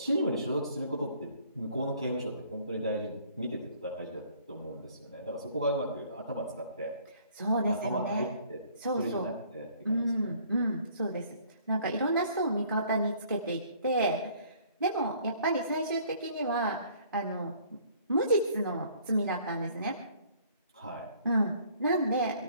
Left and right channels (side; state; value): both; inverted; correlation -0.58